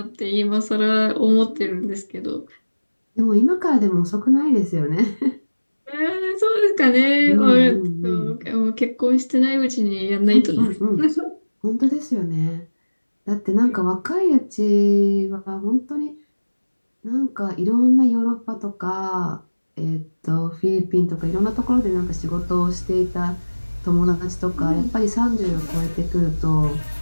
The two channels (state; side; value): inverted; both; correlation -1.00